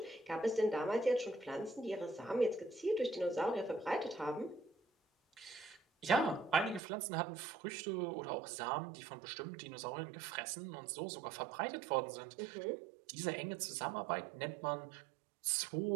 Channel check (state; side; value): drops out; left; at 6.8 s